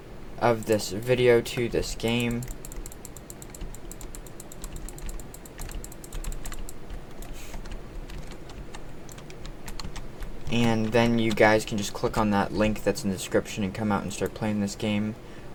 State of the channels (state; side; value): identical; both; correlation 1.00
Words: of this video to this game. And then you guys can just click on that link that's in the description and come out and start playing this game